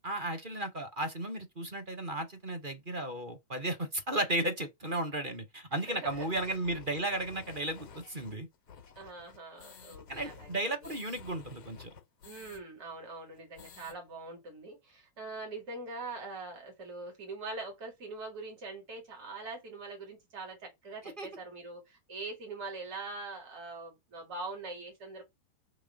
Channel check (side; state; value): left; late; 2.4 ms